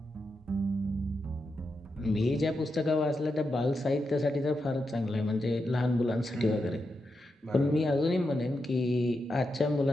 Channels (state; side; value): normal; both; correlation 0.86